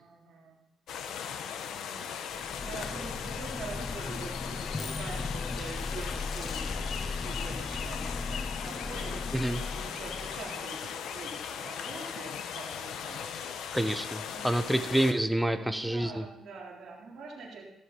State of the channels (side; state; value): both; normal; correlation 0.85